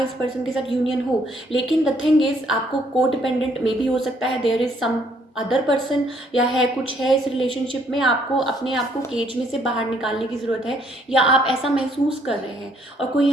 पर्सन के साथ यूनियन हो, लेकिन द थिंग इज़ आपको को डिपेंडेंट मे बी हो सकता है, there is some other person, या है कुछ है इस रिलेशनशिप में, आपको अपने आप को केज में से बाहर निकालने की ज़रूरत है, या आप ऐसा महसूस कर रहे हैं और कोई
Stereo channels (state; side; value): normal; both; correlation 0.67